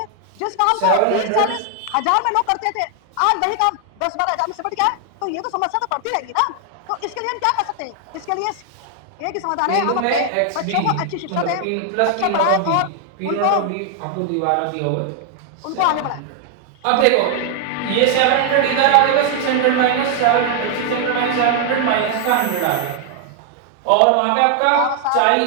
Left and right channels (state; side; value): different; both; correlation 0.00